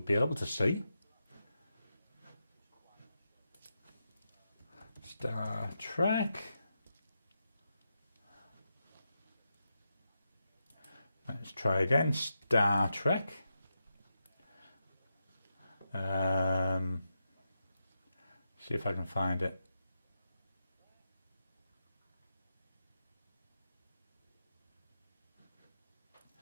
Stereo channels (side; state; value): both; inverted; correlation -0.87